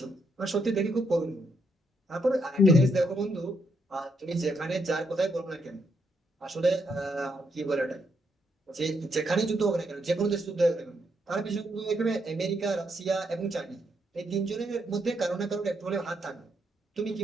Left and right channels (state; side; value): normal; both; correlation 0.77